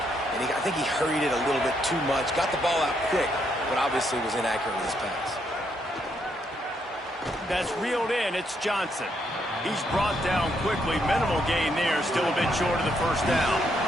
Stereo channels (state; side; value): normal; both; correlation 0.75